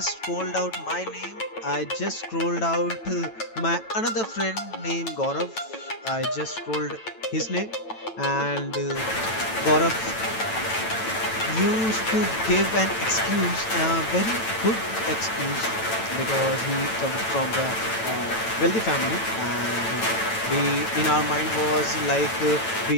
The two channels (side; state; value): right; late; 9.0 ms